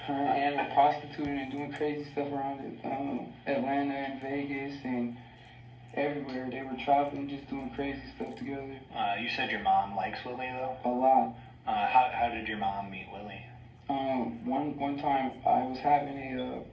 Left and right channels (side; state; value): both; identical; correlation 1.00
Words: Her and Ann were prostituting and doing crazy stuff around Atlanta and Vegas and everywhere. They were traveling, just doing crazy stuff together. You said your mom likes Willie though? A lot. How did your mom meet Willie? One time I was having a